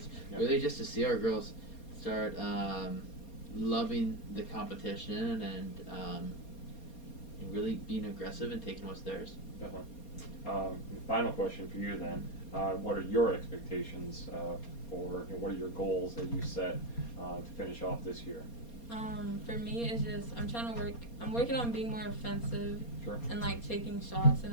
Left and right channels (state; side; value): late; right; 4.3 ms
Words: Yep. Really just to see our girls start loving the competition and really being aggressive and taking what's theirs. Definitely. Final question for you then. What are your expectations for, what are your goals that you set to finish off this year? For me, it's just I'm working on being more offensive. Sure. And like taking shots